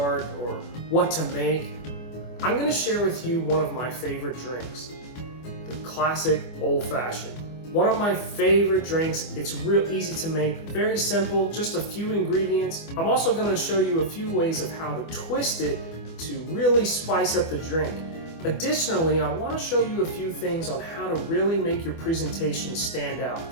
or what to make? I'm going to share with you one of my favorite drinks, the classic old-fashioned. One of my favorite drinks. It's real easy to make, very simple, just a few ingredients. I'm also going to show you a few ways of how to twist it to really spice up the drink. Additionally, I want to show you a few things on how to really make your presentation stand out.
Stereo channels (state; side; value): late; right; 24 ms